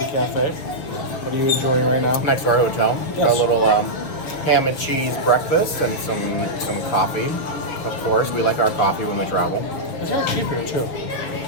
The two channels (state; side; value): late; right; 6.6 ms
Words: cafe. What are you enjoying right now? Next to our hotel. Yes. Got a little ham and cheese breakfast and some coffee. Of course, we like our coffee when we travel. It's very cheap here too.